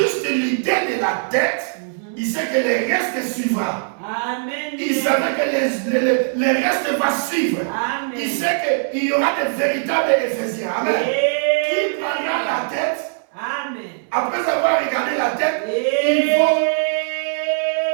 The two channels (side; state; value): left; silent; 64 dB below the other